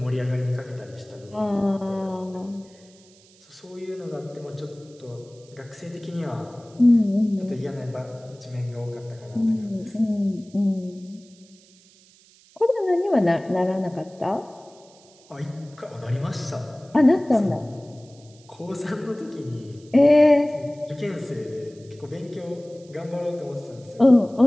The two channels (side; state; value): right; noise; hiss, 27 dB below the sound